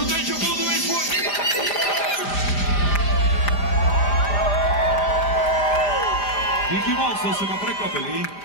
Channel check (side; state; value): right; late; 5.0 ms